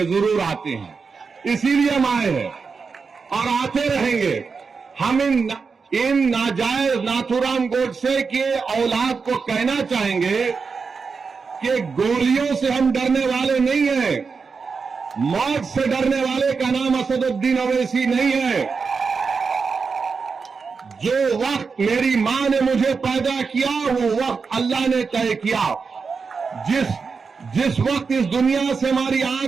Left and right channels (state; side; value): quieter; left; 5.1 dB